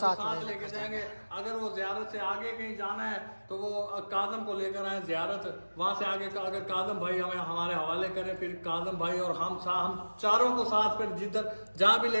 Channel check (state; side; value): inverted; both; correlation -1.00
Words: लेके जाएंगे। अगर वो ज़ियारत से आगे कहीं जाना है तो वो काजम को लेकर आए ज़ियारत, वहां से आगे अगर काजम भाई हमें हमारे हवाले करें, फिर काजम भाई और हम चारों को साथ, फिर जिधर जहाँ भी